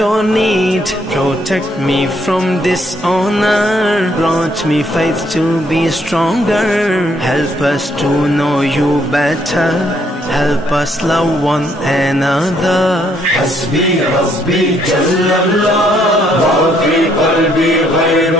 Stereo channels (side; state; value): both; normal; correlation 0.70